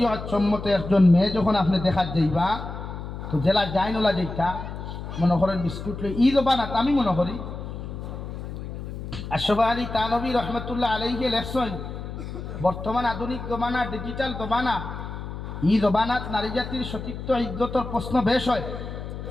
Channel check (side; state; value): left; noise; hum, 8 dB below the sound